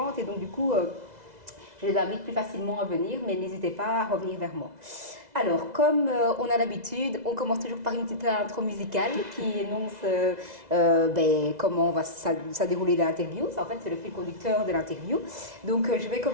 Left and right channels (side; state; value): left; late; 2.0 ms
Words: Et donc du coup, je les invite plus facilement à venir, mais n'hésitez pas à revenir vers moi. Alors, comme on a l'habitude, on commence toujours par une petite intro musicale qui énonce comment va ça dérouler l'interview. Ça, en fait, c'est le fil conducteur de l'interview. Donc, je vais